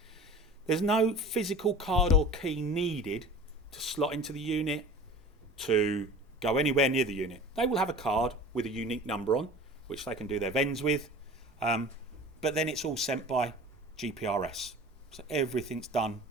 There's no physical card or key needed to slot into the unit, to go anywhere near the unit. They will have a card with a unique number on, which they can do their vends with, but then it's all sent by GPRS. So everything's done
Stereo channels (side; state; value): both; normal; correlation 0.40